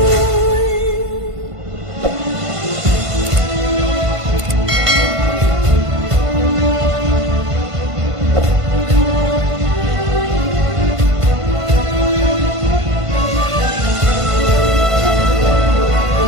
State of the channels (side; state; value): left; late; 1.5 ms